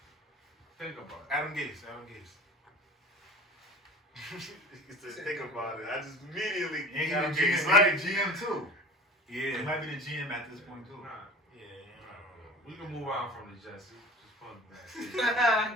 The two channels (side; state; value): both; normal; correlation 0.39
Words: Think about it. Adam Gase. He said, think about it. I just immediately... And he Adam the Gase, GM, like- he the GM too. He Yeah. might be the GM at this point too. Nah, Yeah. we can move on from the Jets. Just put them